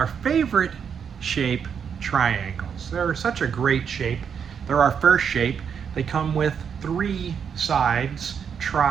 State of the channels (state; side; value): quieter; left; 7.2 dB